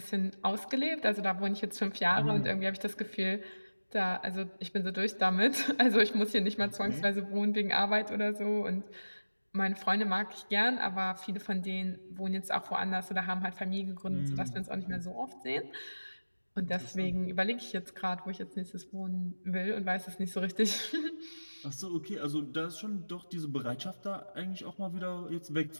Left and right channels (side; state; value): both; inverted; correlation -1.00